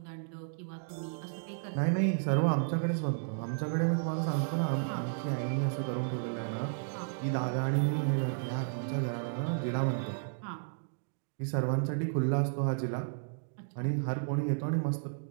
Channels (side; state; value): left; silent; digital silence